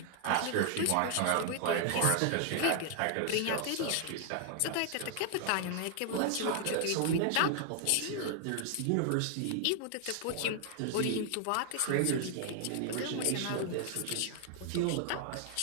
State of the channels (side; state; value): both; different; correlation 0.00